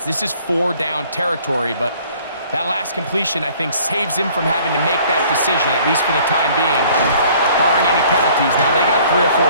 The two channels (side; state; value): both; inverted; correlation -0.55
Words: This is 4 down territory, but that last completion, I think, saves him from having to make that decision, at least for the time being, barring any penalties. Now, they got 3 or 4